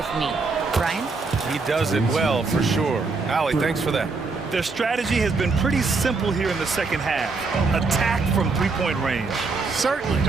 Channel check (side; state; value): left; quieter; 4.1 dB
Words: me. Brian? He does it well, for sure. Allie, thanks for that. Their strategy has been pretty simple here in the second half. Attack from three-point range. Certainly.